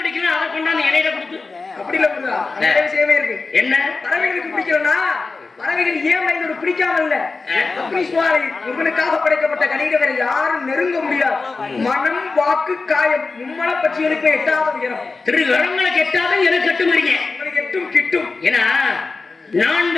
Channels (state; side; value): quieter; right; 4.0 dB